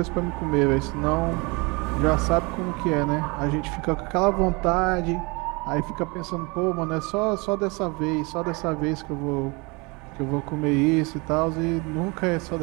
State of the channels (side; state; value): left; quieter; 28.0 dB